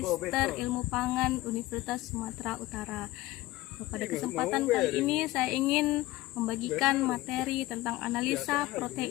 Ilmu Pangan Universitas Sumatera Utara. Pada kesempatan kali ini saya ingin membagikan materi tentang analisa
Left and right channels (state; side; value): quieter; right; 17.9 dB